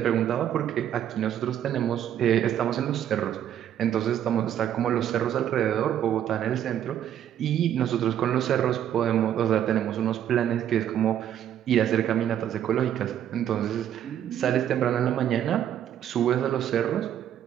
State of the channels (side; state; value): left; quieter; 10.4 dB